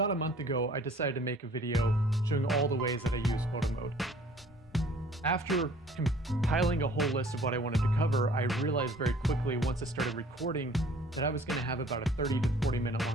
a month ago, I decided to make a video showing all the ways that I use Photomode. After compiling a whole list of what I wanted to cover, I realized very quickly once I started recording that I was going to have about a 30 to 40 minute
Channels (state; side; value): normal; both; correlation 0.53